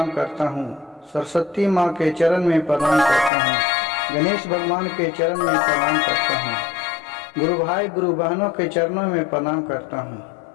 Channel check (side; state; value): right; drops out; at 3.3 s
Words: करता हूँ। सरस्वती माँ के चरण में प्रणाम करता हूँ। गणेश भगवान के चरण में प्रणाम करता हूँ। गुरु भाई गुरु बहनों के चरणों में प्रणाम करता हूँ।